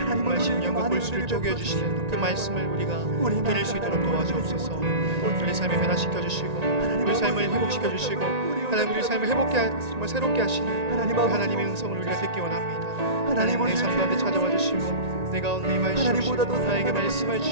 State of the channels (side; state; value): left; late; 1.9 ms